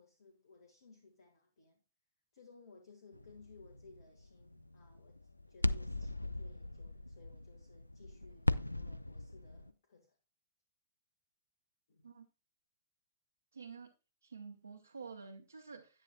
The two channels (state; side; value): inverted; both; correlation -0.96